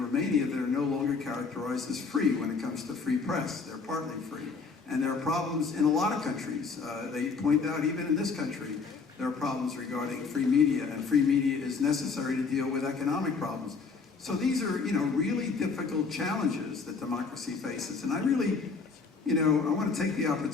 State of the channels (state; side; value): quieter; right; 4.8 dB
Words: that are no longer characterized as free when it comes to free press. They're partly free. And there are problems in a lot of countries. They point out, even in this country, there are problems regarding free media, and free media is necessary to deal with economic problems. So these are, really difficult challenges that democracy faces. And I really, I want to take the